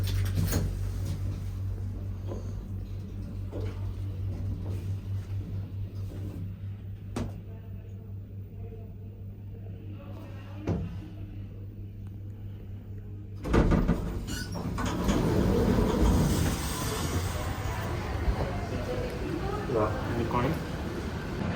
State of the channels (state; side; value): identical; both; correlation 1.00